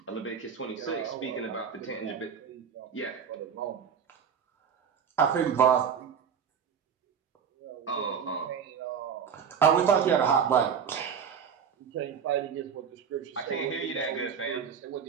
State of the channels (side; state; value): left; quieter; 7.2 dB